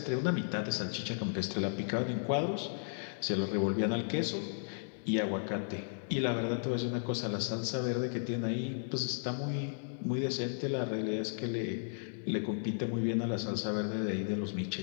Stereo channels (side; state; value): right; silent; digital silence